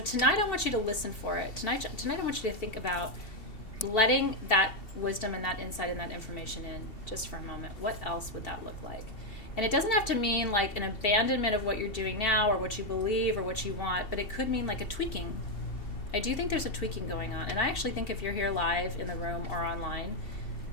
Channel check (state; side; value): late; right; 2.7 ms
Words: I want you to listen for it. Tonight I want you to think about letting that wisdom and that insight and that information in just for a moment. What else would that look like? And it doesn't have to mean like an abandonment of what you're doing now or what you believe or what you want, but it could mean like a tweaking. I do think there's a tweaking going on. And I actually think if you're here live in the room or online,